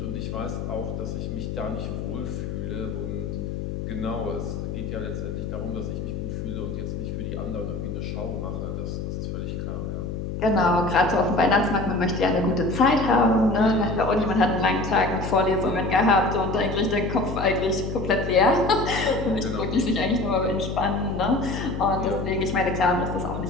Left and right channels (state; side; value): noise; left; hum, 5 dB below the sound